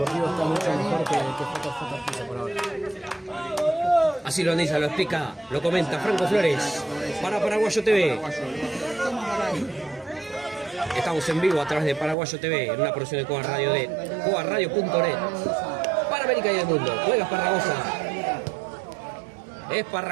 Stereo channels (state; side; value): drops out; left; at 12.2 s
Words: está mucho mejor que JJ por ahora. Así lo analiza, lo explica, lo comenta Franco Flores para Paraguayo TV. Estamos en vivo a través de Paraguayo TV en una producción de Cuba Radio de cuaradio.net para América y el mundo. Juega Esparragosa.